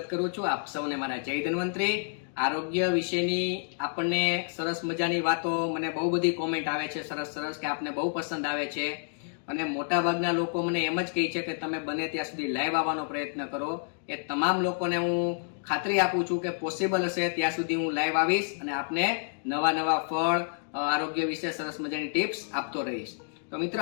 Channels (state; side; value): silent; right; digital silence